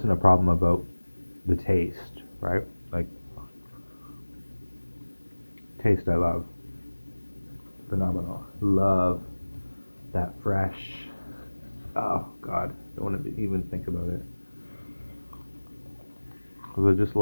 a problem about the taste, right? Like taste I love. Phenomenal. Love that fresh. Oh God, don't want to even think about it. Because I just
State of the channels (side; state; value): both; inverted; correlation -1.00